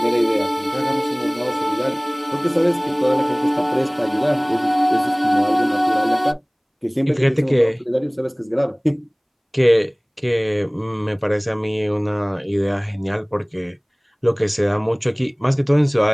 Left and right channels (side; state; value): both; identical; correlation 1.00